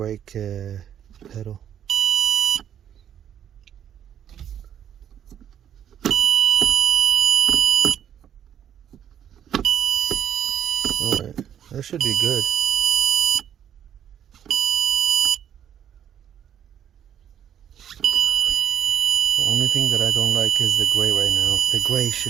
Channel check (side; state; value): left; quieter; 9.6 dB